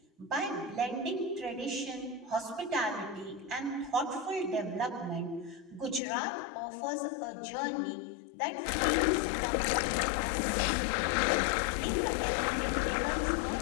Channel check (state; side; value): drops out; right; at 6.0 s